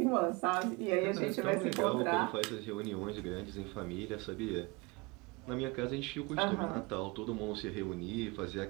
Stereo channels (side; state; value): left; quieter; 26.2 dB